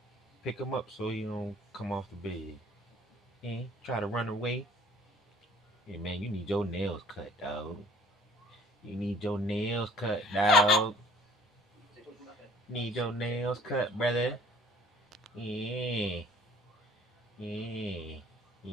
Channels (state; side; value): normal; both; correlation 0.54